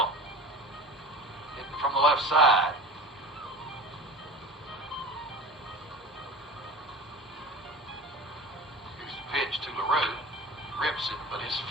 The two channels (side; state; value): both; normal; correlation 0.34